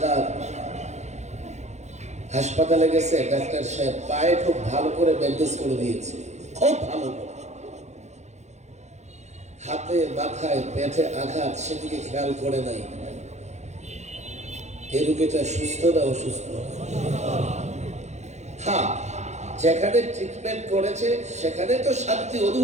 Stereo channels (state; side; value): late; left; 0.33 ms